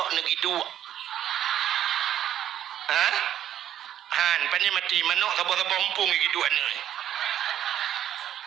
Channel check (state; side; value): quieter; left; 10.8 dB